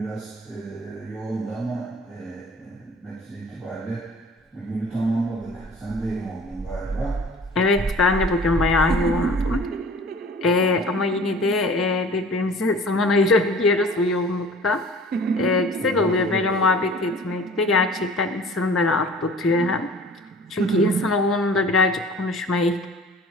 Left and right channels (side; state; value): both; normal; correlation 0.46